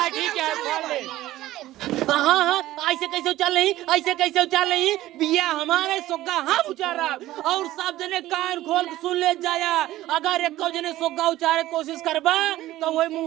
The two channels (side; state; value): left; quieter; 15.5 dB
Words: खा ले हाँ ऐसे कैसे उचाल नहीं, ऐसे कैसे उचाल नहीं, बिया हमारे सोगा हम उचारा और सब जने कान खोल के सुन ले जाया। अगर एक जने सोगा उचारे कोशिश करबा तो वही